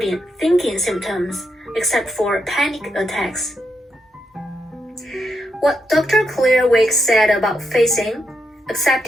thinking symptoms, except for panic attacks. What Dr. Clairwick said about facing,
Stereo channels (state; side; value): normal; both; correlation 0.82